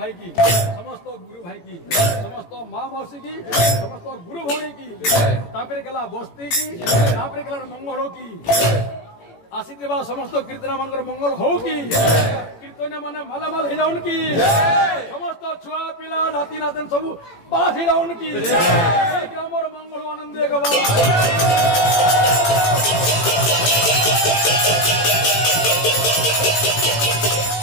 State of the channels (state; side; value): late; right; 18 ms